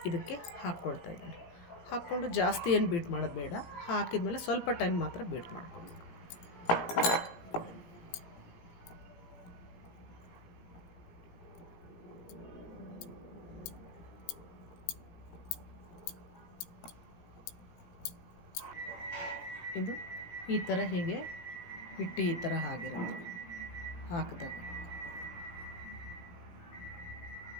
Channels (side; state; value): right; late; 17 ms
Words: ಇದಕ್ಕೆ ಹಾಕ್ಕೊಳ್ತಾ ಇದ್ದೀನಿ. ಹಾಕ್ಕೊಂಡು ಜಾಸ್ತಿ ಏನು ಬೀಟ್ ಮಾಡೋದು ಬೇಡ. ಹಾಕಿದ್ಮೇಲೆ ಸ್ವಲ್ಪ ಟೈಮ್ ಮಾತ್ರ ಬೀಟ್ ಮಾಡ್ಕೊಬೇಕು. ಇದು ಈ ಥರ ಹೀಗೆ ಹಿಟ್ಟು ಈ ಥರ ಆಗಿರುತ್ತೆ ಹಾಕಿದಾಗ.